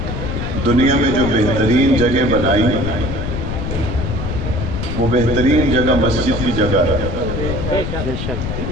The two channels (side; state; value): left; noise; rumble, 4 dB below the sound